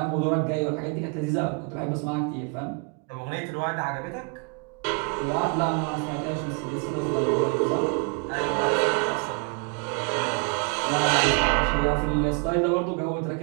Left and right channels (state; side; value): quieter; left; 34.9 dB